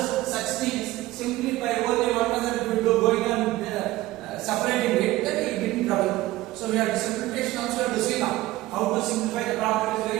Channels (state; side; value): quieter; left; 17.2 dB